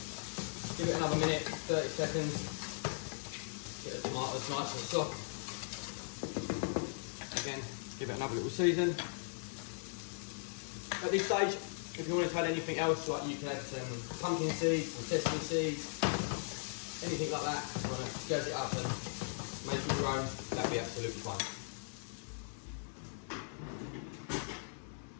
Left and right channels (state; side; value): silent; right; digital silence